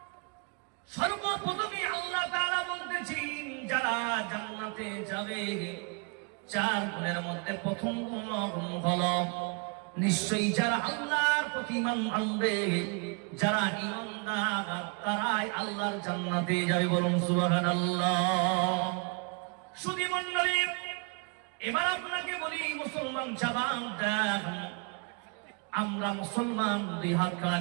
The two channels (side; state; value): left; quieter; 34.5 dB